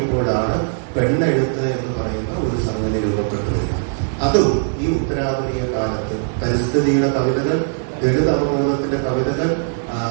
പെണ്ണെഴുത്ത് എന്ന് പറയുന്ന ഒരു സംഗതി രൂപപ്പെട്ടു വരിക. അതും ഈ ഉത്തരാധുനിക കാലത്ത് പരിസ്ഥിതിയുടെ കവിതകൾ, ദളിത് അവബോധത്തിന്റെ കവിതകൾ,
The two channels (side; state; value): left; silent; 66 dB below the other